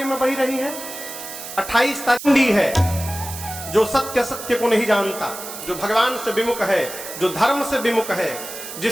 में बही रही है। 28 तारीख है जो सत्य सत्य को नहीं जानता, जो भगवान से विमुख है, जो धर्म से विमुख है,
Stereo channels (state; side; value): noise; right; hiss, 10 dB below the sound